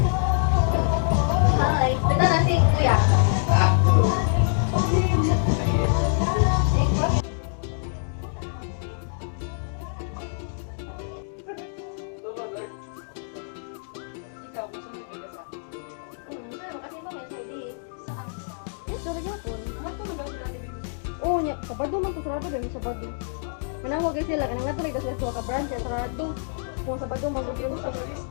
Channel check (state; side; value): silent; right; digital silence